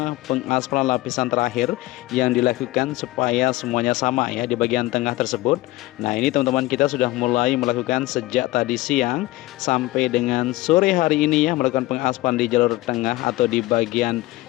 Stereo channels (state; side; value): quieter; right; 18.8 dB